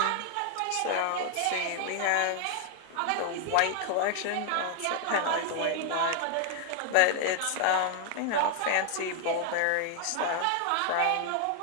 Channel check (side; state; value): both; different; correlation 0.00